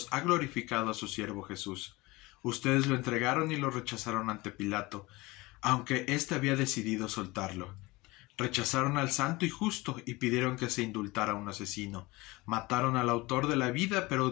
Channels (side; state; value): right; quieter; 22.1 dB